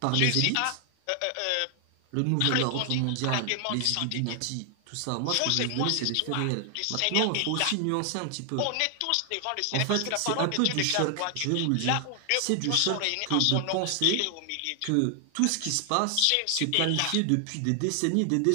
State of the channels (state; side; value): different; both; correlation 0.00